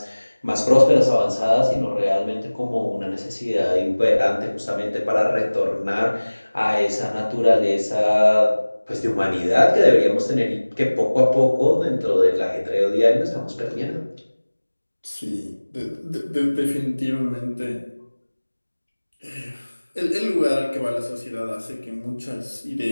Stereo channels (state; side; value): inverted; both; correlation -1.00